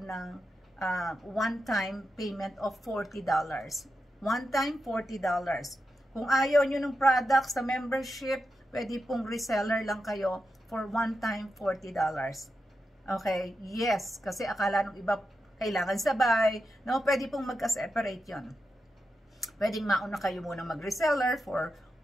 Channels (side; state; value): both; normal; correlation 0.88